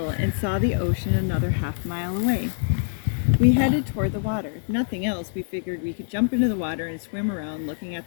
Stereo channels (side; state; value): right; silent; digital silence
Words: and saw the ocean another half-mile away. We headed toward the water. If nothing else, we figured we could jump into the water and swim around looking at